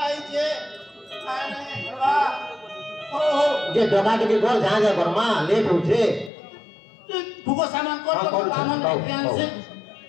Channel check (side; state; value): right; drops out; at 6.3 s